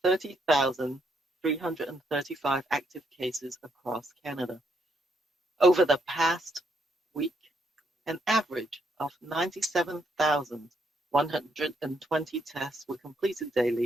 30,335 active cases across Canada. Over the past week, an average of 97,120 tests were completed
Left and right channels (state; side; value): normal; both; correlation 0.74